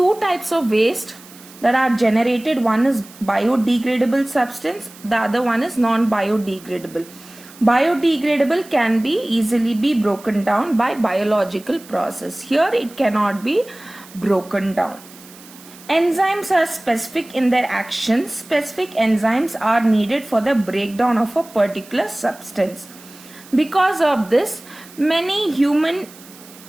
types of waste that are generated. One is biodegradable substance, the other one is non-biodegradable. Biodegradable can be easily be broken down by biological process. Here it cannot be broken down. Enzymes are specific in their actions. Specific enzymes are needed for the breakdown of a particular substance. Because of this, many human-made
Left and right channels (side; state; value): right; noise; hiss, 21 dB below the sound